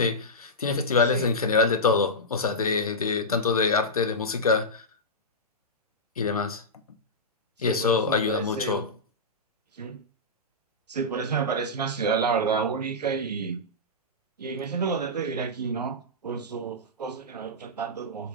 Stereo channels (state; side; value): normal; both; correlation -0.12